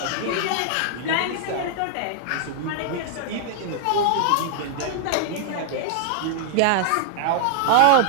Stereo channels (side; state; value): both; different; correlation 0.00